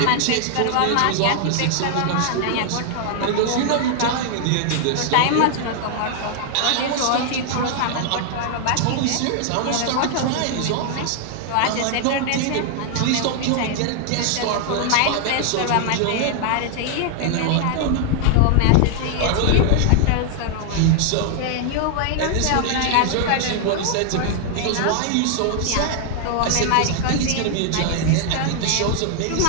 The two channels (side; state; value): both; different; correlation 0.00